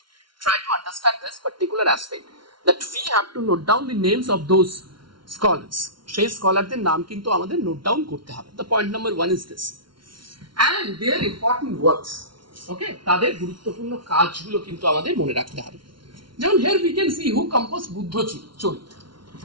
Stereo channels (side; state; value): left; late; 0.73 ms